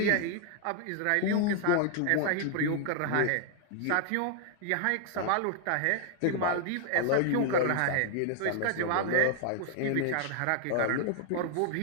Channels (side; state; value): both; different; correlation 0.00